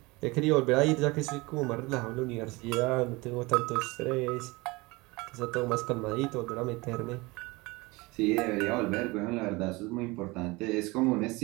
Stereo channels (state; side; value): quieter; left; 23.6 dB